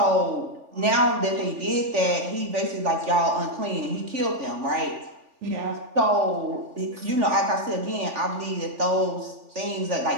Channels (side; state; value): left; late; 3.4 ms